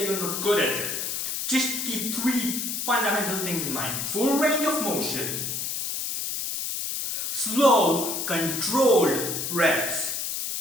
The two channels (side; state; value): left; noise; hiss, 3 dB below the sound